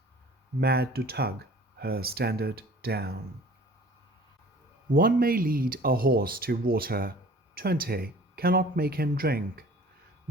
mad to tug her standard down. One may lead a horse to water, 20 cannot make him drink,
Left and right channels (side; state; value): both; normal; correlation 0.47